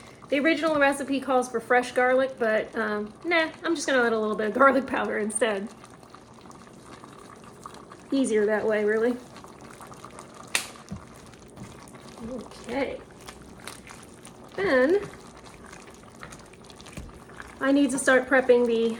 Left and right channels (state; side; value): identical; both; correlation 1.00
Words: The original recipe calls for fresh garlic, but nah, I'm just gonna add a little bit of garlic powder instead. Easier that way, really. Okay. Then I need to start prepping